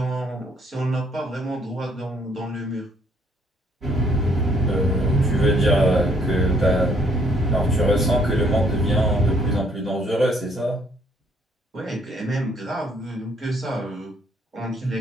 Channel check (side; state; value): both; normal; correlation 0.66